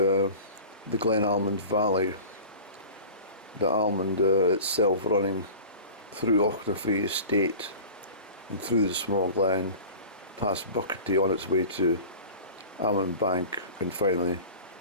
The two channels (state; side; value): inverted; both; correlation -0.38